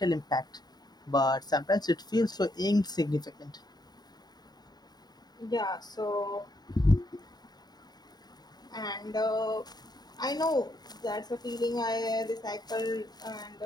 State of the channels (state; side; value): late; right; 0.20 ms